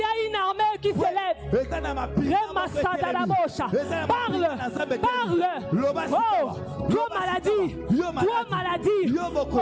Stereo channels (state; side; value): identical; both; correlation 1.00